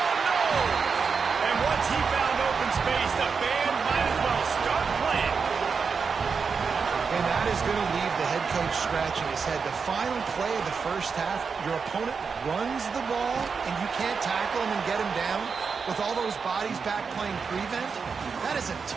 no! And once he found open space, the band might as well start playing. And that is going to leave the head coach scratching his head. The final play of the first half, your opponent runs the ball, and you can't tackle him and get him down with all those bodies back playing prevent. That is a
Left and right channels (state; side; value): quieter; left; 5.5 dB